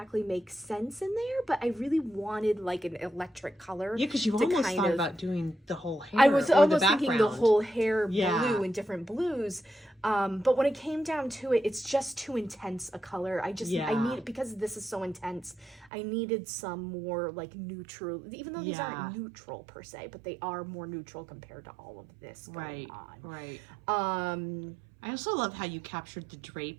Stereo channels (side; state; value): left; drops out; at 15.9 s